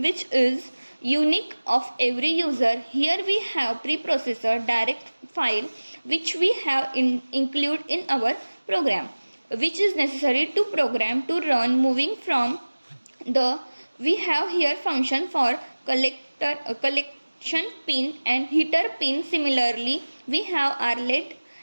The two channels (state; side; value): inverted; both; correlation -1.00